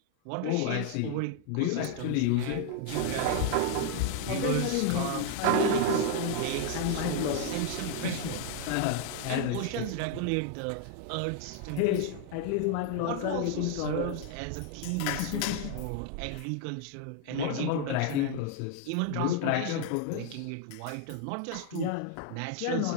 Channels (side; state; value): both; different; correlation 0.00